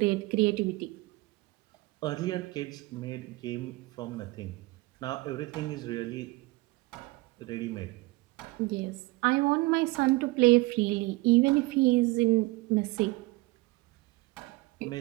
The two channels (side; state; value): left; quieter; 22.3 dB